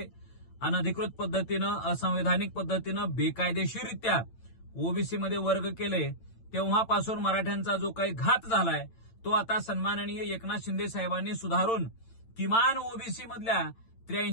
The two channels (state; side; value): late; right; 8.9 ms